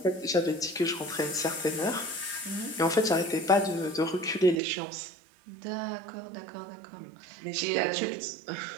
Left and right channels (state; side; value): drops out; left; at 4.6 s